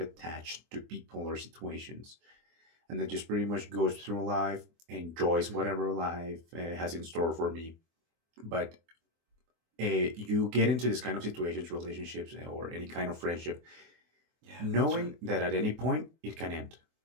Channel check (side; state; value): left; late; 24 ms